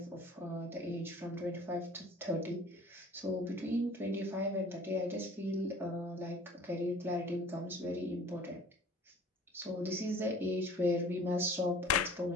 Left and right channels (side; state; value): both; normal; correlation 0.48